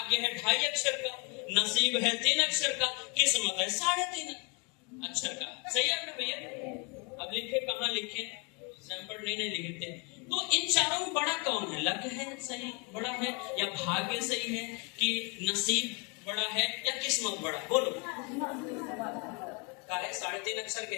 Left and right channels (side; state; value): right; quieter; 31.2 dB